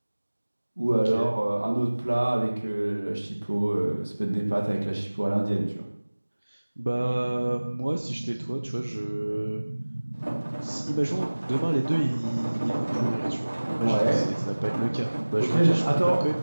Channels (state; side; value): inverted; both; correlation -1.00